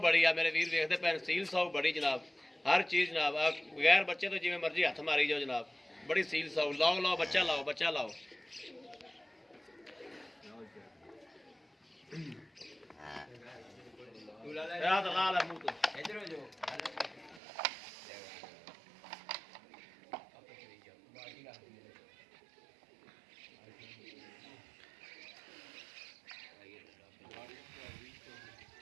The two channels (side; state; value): left; drops out; at 17.4 s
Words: बड़ी आ मेरे वीर वेखते पे सील साऊ बड़ी जनाब, हर चीज़ जनाब बगैर बच्चे तो जिवें मर्जी हथ मारी जाओ जनाब, बड़ी सील साऊ। लाओ लाओ बच्चा लाओ, बच्चा लाओ। ला ला मुंह तो इधर हो जाओ।